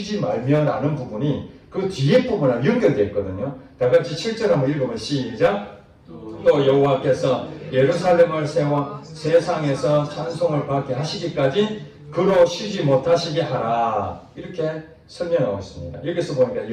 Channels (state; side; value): identical; both; correlation 1.00